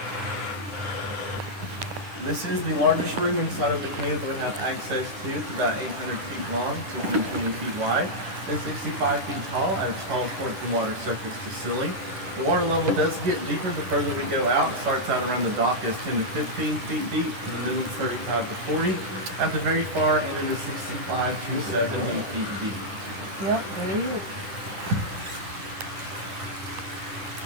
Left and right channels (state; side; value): late; left; 10 ms